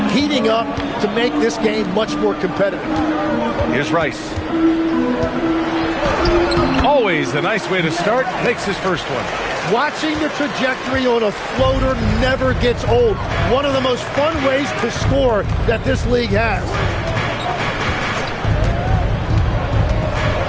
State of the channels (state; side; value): identical; both; correlation 1.00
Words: heating up to make this game much more competitive. Here's Rice. Always a nice way to start. Makes his first one. Watching the trajectory on a floater never gets old. One of the most fun ways to score that this league has.